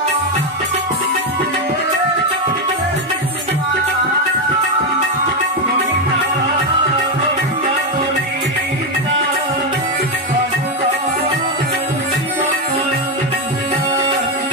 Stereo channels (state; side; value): normal; both; correlation 0.08